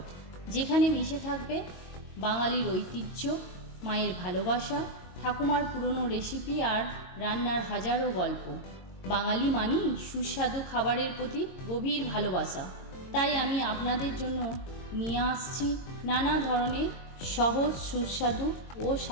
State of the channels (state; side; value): late; right; 22 ms